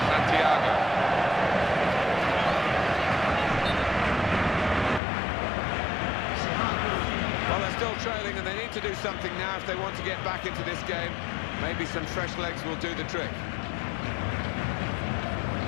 Santiago. Well, they're still trailing and they need to do something now if they want to get back into this game. Maybe some fresh legs will do the trick.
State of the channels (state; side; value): drops out; right; at 5.0 s